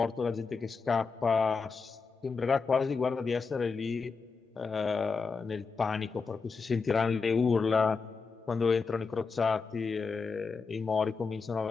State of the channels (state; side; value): quieter; right; 4.8 dB